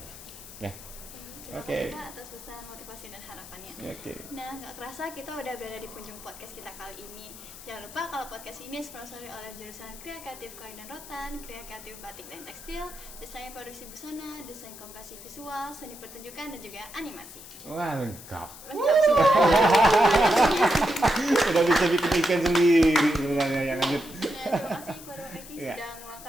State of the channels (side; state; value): left; noise; hiss, 15 dB below the sound